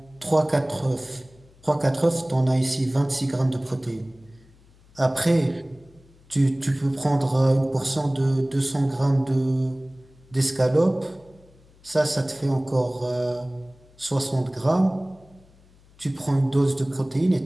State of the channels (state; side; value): noise; left; hum, 28 dB below the sound